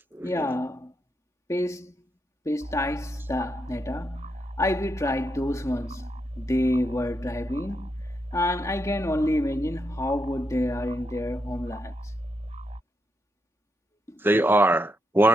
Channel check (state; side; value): normal; both; correlation 0.82